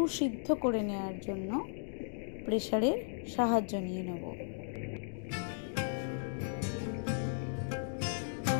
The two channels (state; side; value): silent; right; digital silence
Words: করে নেওয়ার জন্য প্রেসারের সাহায্য নিয়ে নেব।